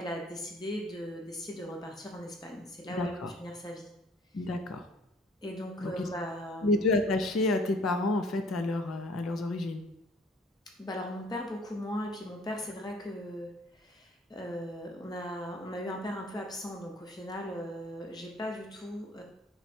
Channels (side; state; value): both; normal; correlation 0.55